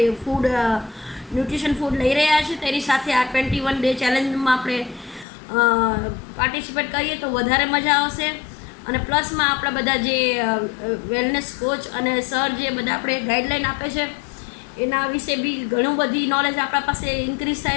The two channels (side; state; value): right; drops out; at 5.2 s